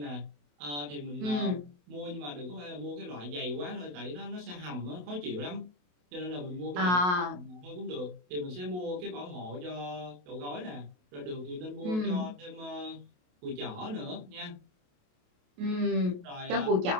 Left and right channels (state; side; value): late; left; 28 ms